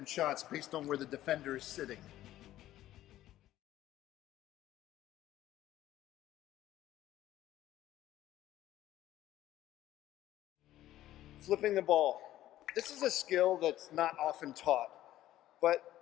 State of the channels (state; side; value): quieter; right; 13.8 dB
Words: shots based on where the defender is sitting. Flipping the ball. This is a skill that's not often taught,